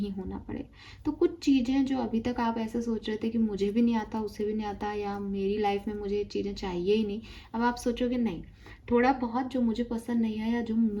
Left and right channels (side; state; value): both; identical; correlation 1.00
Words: होना पड़े। तो कुछ चीज़ें जो अभी तक आप ऐसे सोच रहे थे कि मुझे भी नहीं आता, उसे भी नहीं आता, या मेरी लाइफ में मुझे ये चीज़ें चाहिए ही नहीं, अब आप सोचोगे नहीं, थोड़ा बहुत जो मुझे पसंद नहीं है या जो